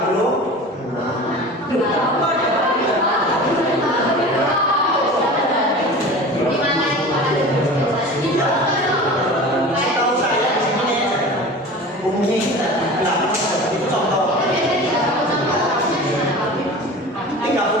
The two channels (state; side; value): normal; both; correlation 0.36